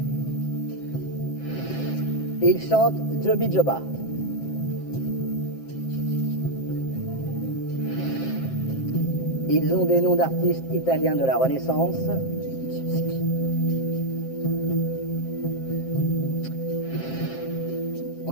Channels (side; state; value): right; late; 7.6 ms